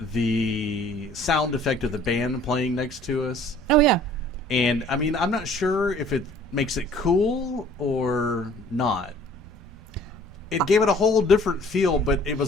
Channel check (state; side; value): normal; both; correlation 0.54